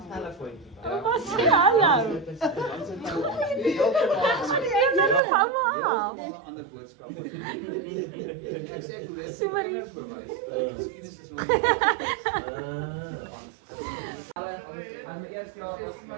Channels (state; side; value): drops out; left; at 5.2 s